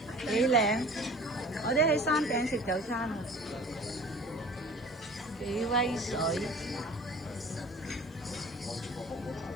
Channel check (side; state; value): left; noise; hiss, 29 dB below the sound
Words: 幾靚！我哋喺山頂食早餐啊，幾威水！